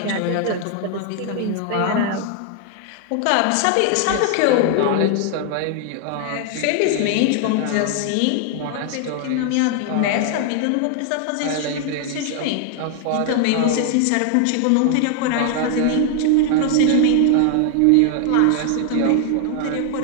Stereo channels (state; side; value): different; both; correlation 0.00